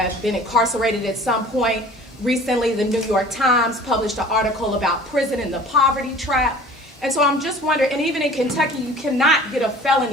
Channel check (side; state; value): both; normal; correlation 0.47